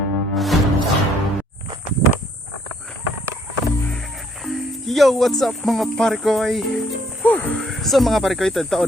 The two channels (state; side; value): normal; both; correlation 0.65